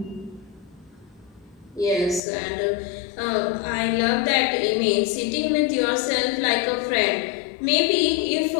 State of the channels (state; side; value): drops out; right; at 2.2 s